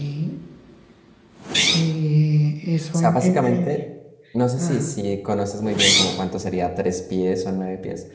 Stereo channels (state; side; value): identical; both; correlation 1.00